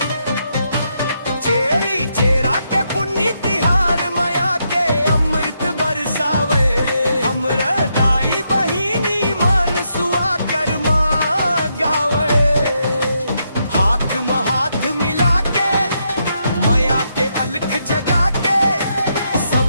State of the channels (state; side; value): inverted; both; correlation -0.79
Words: चेरी चेरा के पुण्य तिहार माया के अमृत बरसावे, हमरा दाई बहिनी मान सुआ कर्मा गावे। हाथ में हाथ मिला के माया के अलख जगा के